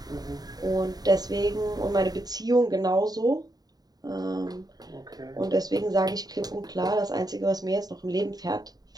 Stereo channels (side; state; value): left; late; 0.19 ms